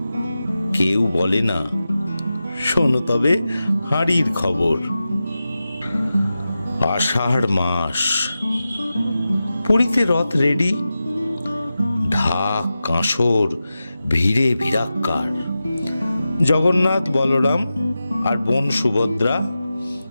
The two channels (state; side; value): inverted; both; correlation -0.93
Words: কেউ বলে না, শোনো তবে হাঁড়ির খবর। আষাঢ় মাস, পুরীতে রথ রেডি, ঢাক কাঁসর ভিড়ে ভিড়াক্কার। জগন্নাথ, বলরাম আর বোন সুভদ্রা